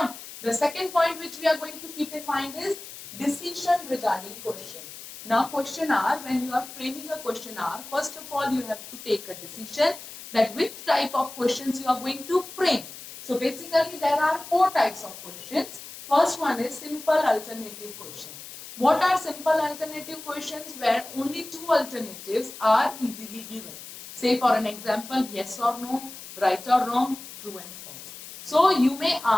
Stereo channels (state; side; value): noise; left; hiss, 14 dB below the sound